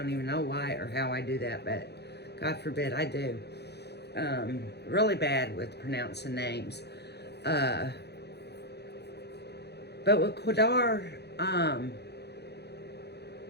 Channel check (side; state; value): right; late; 0.48 ms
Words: even know why or how I do that, but God forbid I do. Really bad with pronouncing names. But with Qdar,